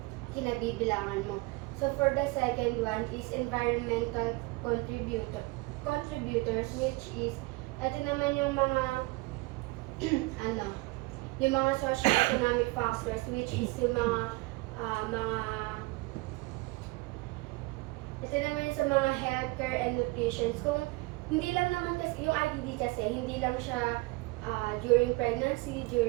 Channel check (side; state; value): left; quieter; 23.6 dB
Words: kinabibilangan mo. So for the second one is environmental contributors, which is ito naman yung mga yung mga socio-economic factors, which is yung ito naman sa mga healthcare and nutrition. Kung hindi lang naman kasi, yung IDD kasi, hindi lang siya during pregnancy,